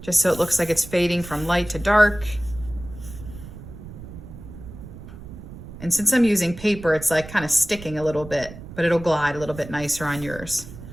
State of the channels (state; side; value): noise; right; rumble, 14 dB below the sound